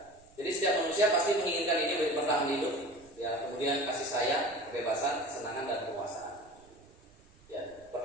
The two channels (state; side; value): noise; right; rumble, 28 dB below the sound